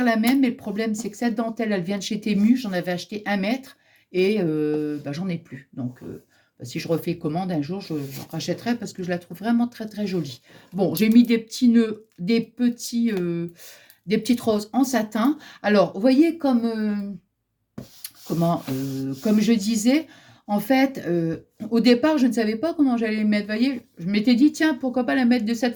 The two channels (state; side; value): identical; both; correlation 1.00